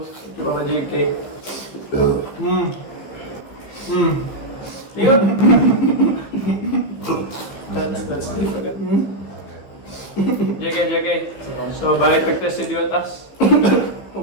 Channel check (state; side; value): late; right; 15 ms